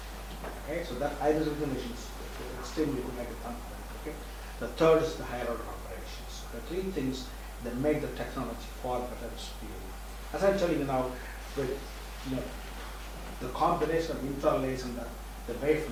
Okay? So that iris recognition is extremely good, like a thumbprint. Okay? The third is the higher order operations. The 3 things that make the technology far better superior. As I'm telling you now, with the combination of infrared laser and the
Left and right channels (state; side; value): identical; both; correlation 1.00